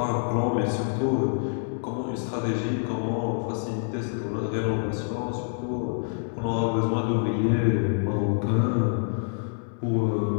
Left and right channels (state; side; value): silent; right; digital silence